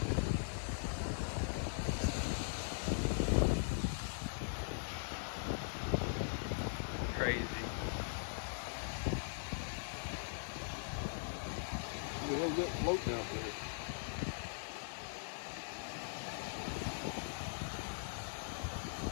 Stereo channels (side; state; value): right; silent; 50 dB below the other